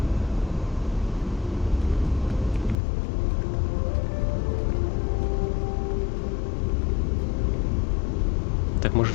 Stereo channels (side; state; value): right; drops out; at 2.8 s